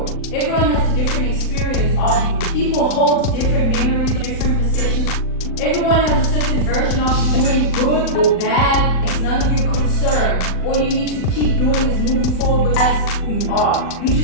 Everyone has a different experience of you. People hold different memories, different perceptions. Everyone has a certain version of you, doing good or bad. It's none of your concern. All you need to keep doing is moving forward with as who you are. You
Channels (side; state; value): right; late; 39 ms